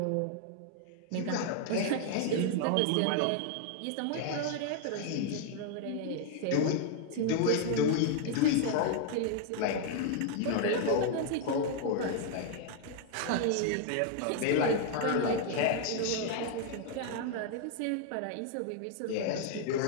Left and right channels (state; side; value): different; both; correlation 0.00